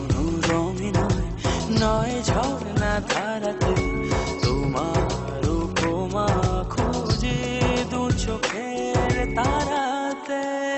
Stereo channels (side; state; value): both; identical; correlation 1.00